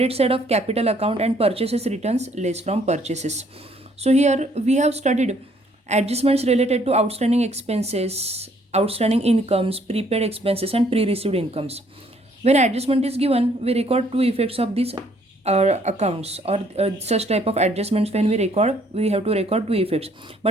side of capital account, and purchases returns less from purchases. So here we have studied adjustments related to outstanding expenses, outstanding incomes, prepaid expenses and pre-received incomes. When adjustment is given, we record two effects of these accounts or such type of adjustments. When we record, we have to record two effects.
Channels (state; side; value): normal; both; correlation 0.64